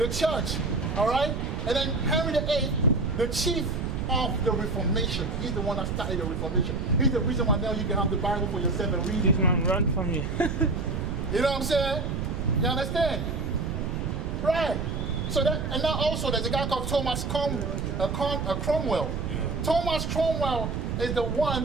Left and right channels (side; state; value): right; noise; rumble, 2 dB below the sound